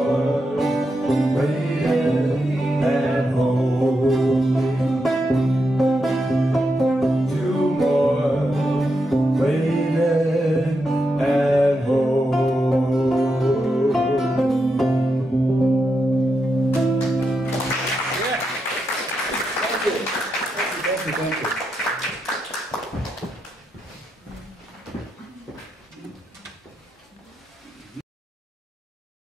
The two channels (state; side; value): normal; both; correlation 0.85